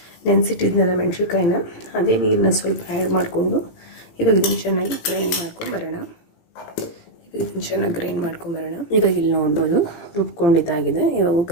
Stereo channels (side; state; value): right; late; 17 ms